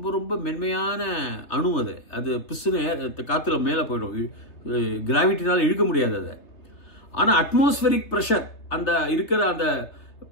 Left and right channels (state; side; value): late; right; 3.1 ms